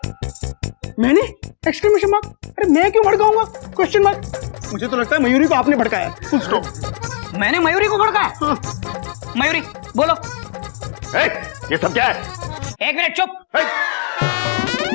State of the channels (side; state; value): right; silent; digital silence